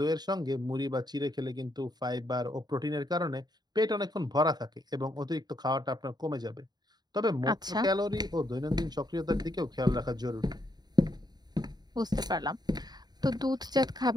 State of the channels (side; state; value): left; late; 0.20 ms